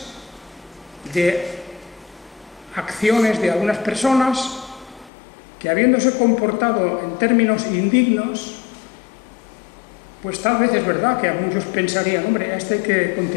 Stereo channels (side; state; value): right; drops out; at 5.1 s